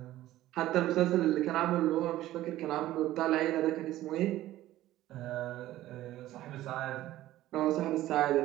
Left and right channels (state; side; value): quieter; left; 14.9 dB